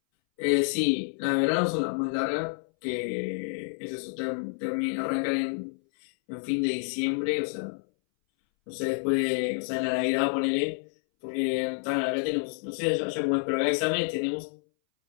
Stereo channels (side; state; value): right; silent; 59 dB below the other